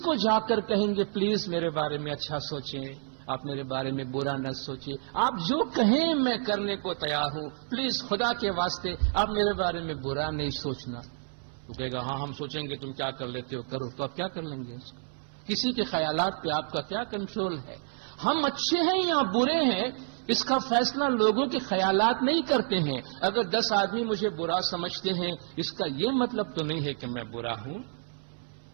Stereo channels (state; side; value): silent; left; 58 dB below the other